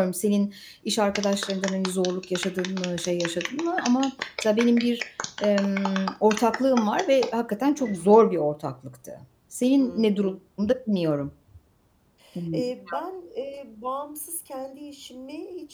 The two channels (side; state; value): both; identical; correlation 1.00